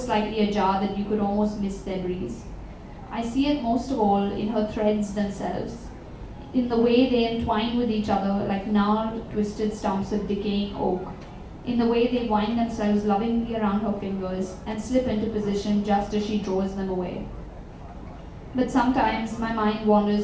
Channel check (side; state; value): both; identical; correlation 1.00